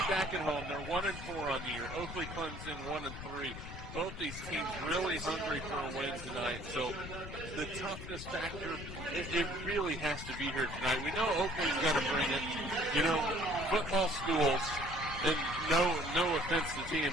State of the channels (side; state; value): left; noise; rumble, 10 dB below the sound